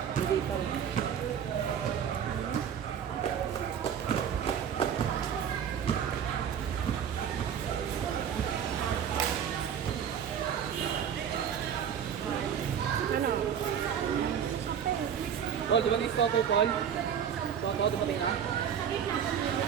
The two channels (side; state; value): left; quieter; 8.3 dB